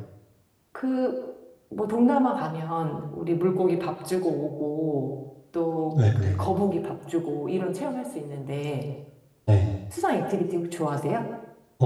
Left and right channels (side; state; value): both; identical; correlation 1.00